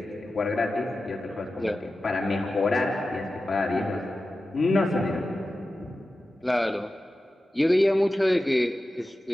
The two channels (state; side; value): normal; both; correlation 0.93